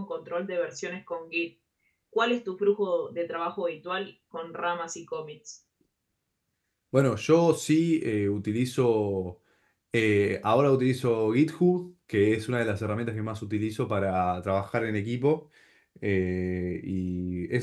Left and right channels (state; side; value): identical; both; correlation 1.00